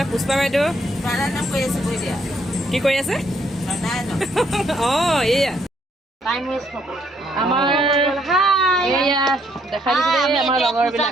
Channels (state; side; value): normal; both; correlation 0.70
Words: পুষ্পা বাইদেউ কি কৰি আছে অঁ এয়া আমাৰ এয়া দেখা দিছে আমাৰ